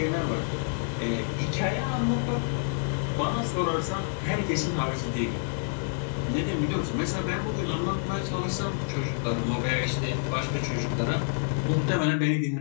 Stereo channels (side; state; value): right; silent; 59 dB below the other